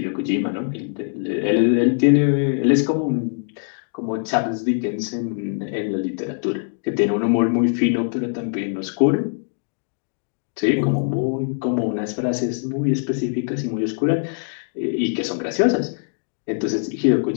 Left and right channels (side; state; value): right; silent; digital silence